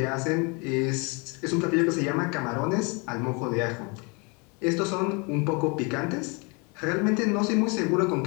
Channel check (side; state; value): right; quieter; 31.2 dB